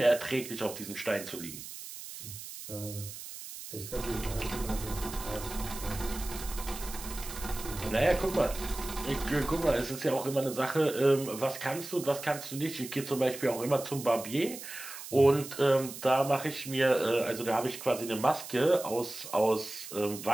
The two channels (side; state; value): right; noise; hiss, 11 dB below the sound